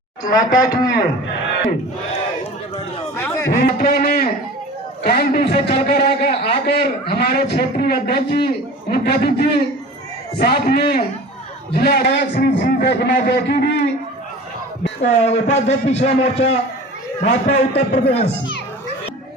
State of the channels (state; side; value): normal; both; correlation 0.39